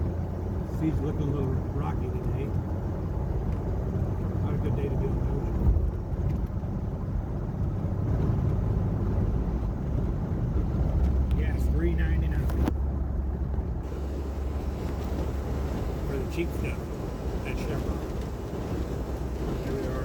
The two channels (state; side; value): identical; both; correlation 1.00